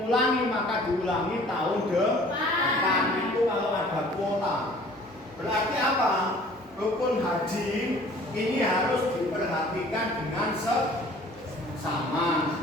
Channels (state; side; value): normal; both; correlation 0.51